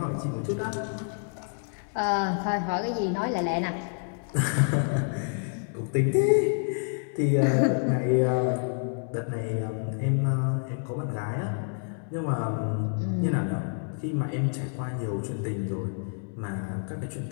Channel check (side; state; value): right; silent; 59 dB below the other